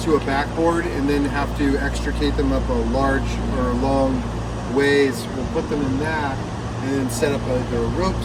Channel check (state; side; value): identical; both; correlation 1.00